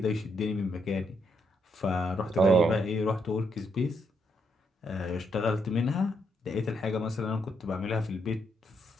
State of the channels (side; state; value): both; normal; correlation 0.77